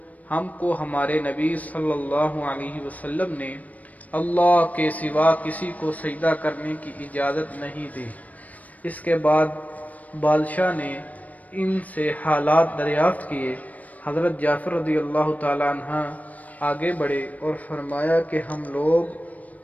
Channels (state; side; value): late; right; 0.072 ms